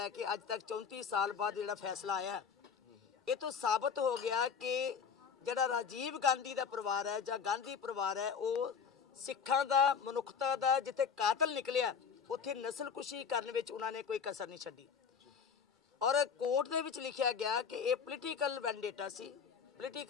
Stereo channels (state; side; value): quieter; right; 6.5 dB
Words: ਕੇ ਅੱਜ ਤੱਕ 34 ਸਾਲ ਬਾਅਦ ਜਿਹੜਾ ਫੈਸਲਾ ਆਇਆ, ਇਹ ਤੋਂ ਸਾਬਤ ਹੋ ਗਿਆ ਕਿ ਜਿਹੜਾ ਰਾਜੀਵ ਗਾਂਧੀ ਦਾ ਪਰਿਵਾਰ ਹੈ ਜਾਂ ਗਾਂਧੀ ਪਰਿਵਾਰ ਹੈ, ਉਹ ਸਿੱਖਾਂ ਦਾ, ਮਨੁੱਖਤਾ ਦਾ ਜਿੱਥੇ ਕਾਤਲ ਨਿਕਲਿਆ ਉੱਥੇ ਨਸਲਕੁਸ਼ੀ ਕਰਨ ਵਿੱਚ ਉਹਨਾਂ ਨੇ ਕੋਈ ਕਸਰ ਨਹੀਂ ਛੱਡੀ। ਔਰ ਕੋਰਟ ਦੇ ਵਿੱਚ ਲਿਖਿਆ ਗਿਆ ਕਿ ਇਹ ਪੋਲੀਟੀਕਲ ਵੈਂਡੇਟਾ ਸੀ,